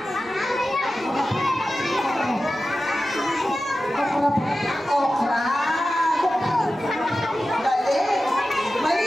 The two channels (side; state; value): both; normal; correlation 0.94